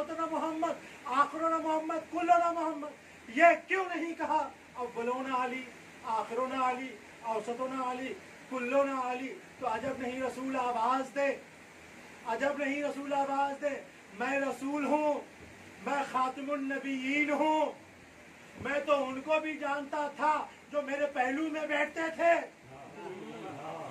मोहम्मद, आखिरुना मोहम्मद, कुल्लुना मोहम्मद? ये क्यों नहीं कहा अव्वलुना अली, आखिरुना अली, औसतुना अली, कुल्लुना अली? तो अजब नहीं रसूल आवाज दे, अजब नहीं रसूल आवाज दे, मैं रसूल हूँ, मैं खातिमुन नबीयीन हूँ। मैं तो उनको भी जानता था जो मेरे पहलू में बैठते थे।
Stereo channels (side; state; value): both; identical; correlation 1.00